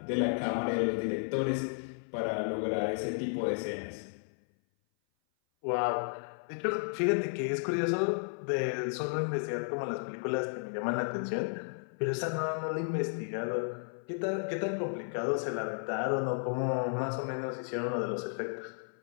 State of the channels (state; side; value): silent; right; 56 dB below the other